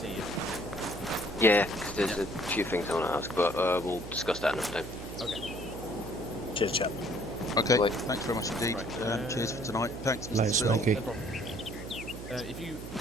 you. Yeah, 'cause there's a few things I want to ask, but we'll discuss that another time. Okay. Cheers, chap. Okay, Right. thanks very much indeed. Right, cheers for tonight. Thanks, Mr. Later, Sill. Smokey. No problem. If you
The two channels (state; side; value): noise; right; hum, 11 dB below the sound